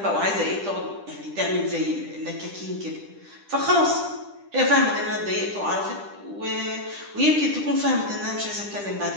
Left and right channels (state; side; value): late; left; 10 ms